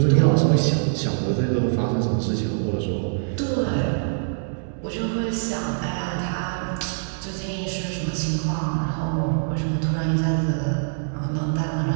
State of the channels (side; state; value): left; silent; digital silence